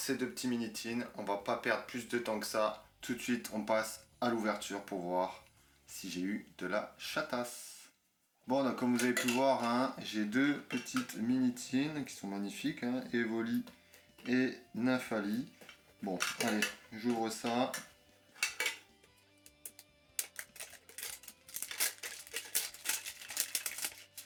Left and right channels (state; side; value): identical; both; correlation 1.00